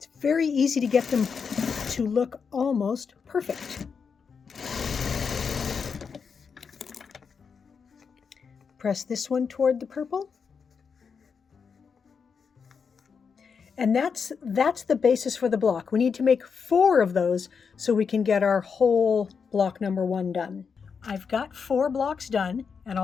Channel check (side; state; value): right; quieter; 6.0 dB